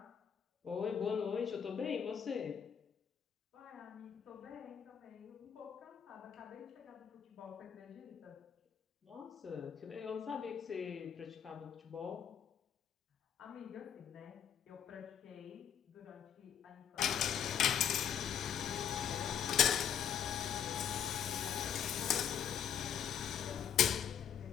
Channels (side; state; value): right; quieter; 8.6 dB